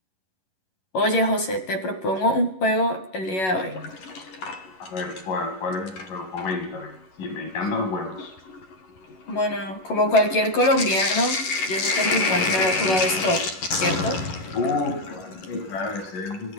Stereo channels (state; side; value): late; right; 11 ms